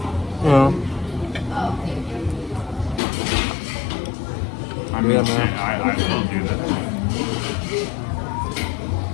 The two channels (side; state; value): right; drops out; at 3.0 s